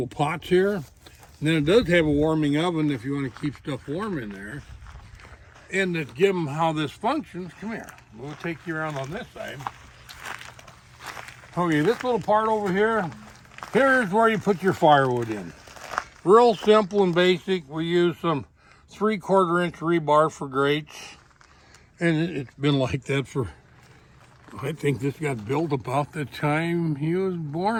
pots here. And then it does have a warming oven if you want to keep stuff warm in there. And to give them how this functions, come here. We'll take you around on this side. Okay, this little part over here, here's where you put your firewood in. Real simple and basic. We use some 3/4 inch rebar for grates. And it's been like that for, I think this got built about the time he was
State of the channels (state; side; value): identical; both; correlation 1.00